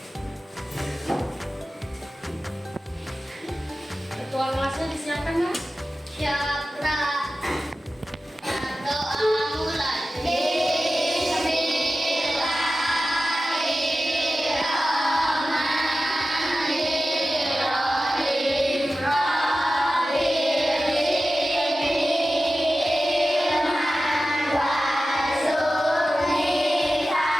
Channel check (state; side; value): normal; both; correlation 0.94